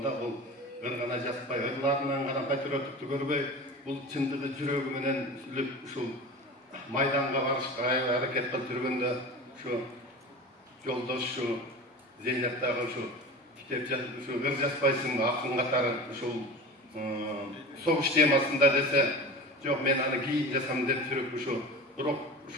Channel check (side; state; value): both; normal; correlation 0.32